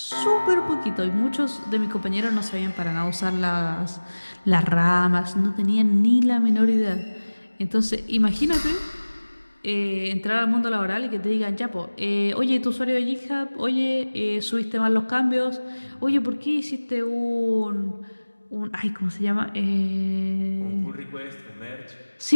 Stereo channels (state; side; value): inverted; both; correlation -1.00